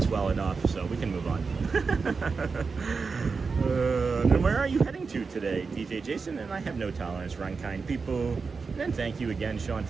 well enough, so we can move on. Then where are you heading to today, DJ Jason? And I have no tolerance for unkind people. And then thank you again, Sean.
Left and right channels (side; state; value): left; quieter; 4.8 dB